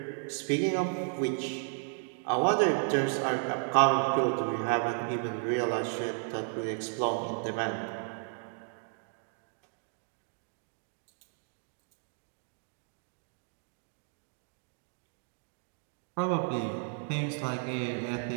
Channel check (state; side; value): silent; left; 55 dB below the other